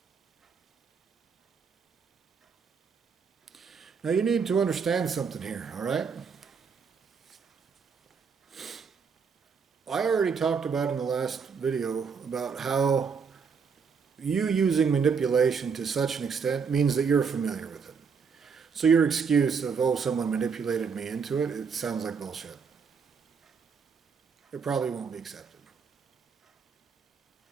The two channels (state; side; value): quieter; left; 5.9 dB